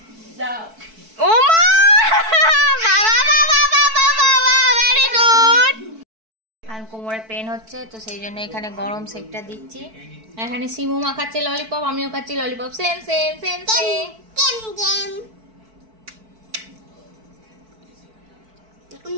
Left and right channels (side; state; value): left; late; 4.5 ms